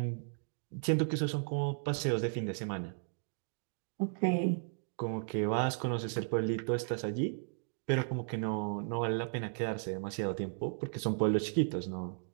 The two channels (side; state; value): left; silent; digital silence